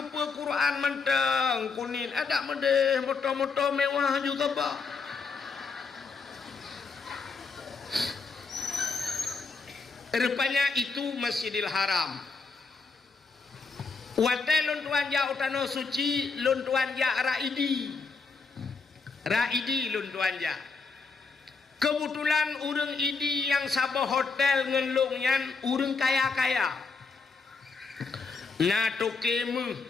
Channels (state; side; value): quieter; right; 4.6 dB